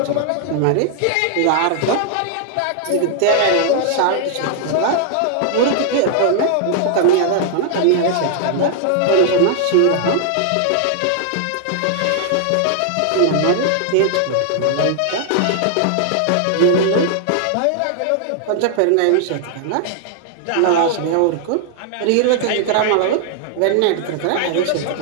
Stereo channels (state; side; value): different; both; correlation 0.00